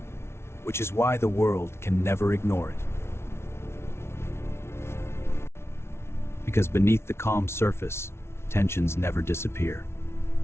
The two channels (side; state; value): right; late; 0.12 ms